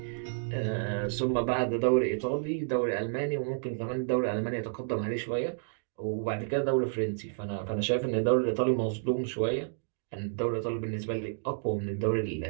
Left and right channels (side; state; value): left; silent; digital silence